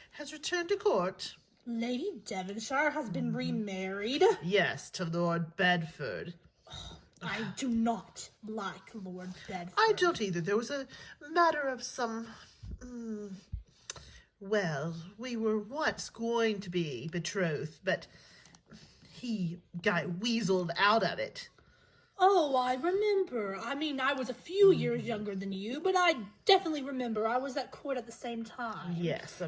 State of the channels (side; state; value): both; identical; correlation 1.00